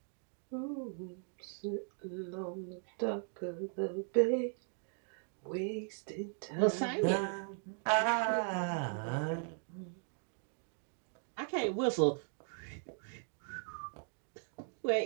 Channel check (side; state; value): left; silent; 52 dB below the other